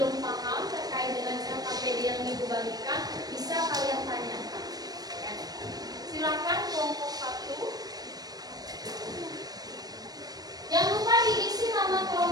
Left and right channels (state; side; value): late; left; 0.19 ms